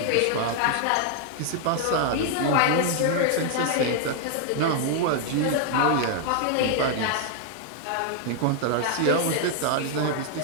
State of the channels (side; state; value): both; different; correlation 0.00